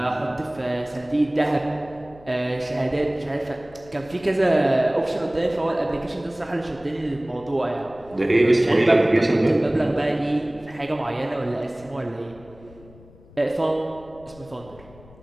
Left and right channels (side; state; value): left; noise; rumble, 23 dB below the sound